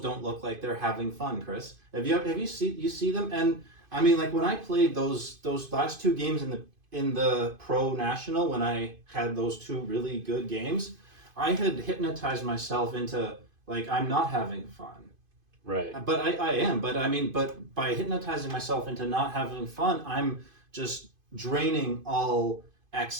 look like they're having fun. Chris, have you see them? And I mean, like when I played those last two games in the pro national, when I had those two really good games, I had hypnotized myself into like I'm not having fun. Right. But I am. But I mean, but by hypnotizing myself into not having fun, I'm just draining all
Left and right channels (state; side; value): late; left; 2.5 ms